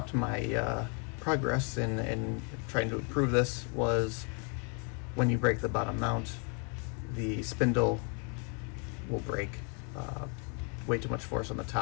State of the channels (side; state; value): right; quieter; 38.3 dB